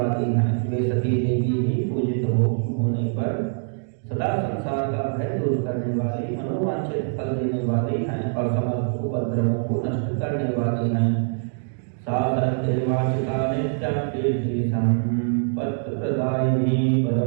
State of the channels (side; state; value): left; silent; digital silence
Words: हैं। वे सती देवी ही पूजित होने पर सदा संसार का भय दूर करने वाली, मनोवांछित फल देने वाली हैं और समस्त उपद्रवों को नष्ट करने वाली हैं। सा सत्यवाचिता नित्यं कीर्ति संपत्ति प्रदायिनी